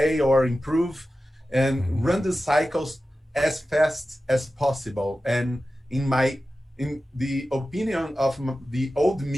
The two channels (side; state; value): both; normal; correlation 0.94